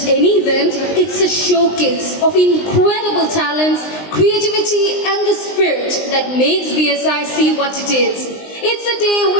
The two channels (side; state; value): right; late; 19 ms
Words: any event, it's a showcase of incredible talents, creativity and the spirit that makes BSISC what it is. It's a day